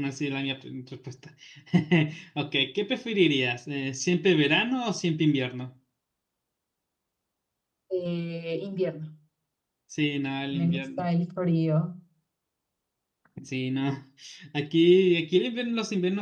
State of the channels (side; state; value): both; identical; correlation 1.00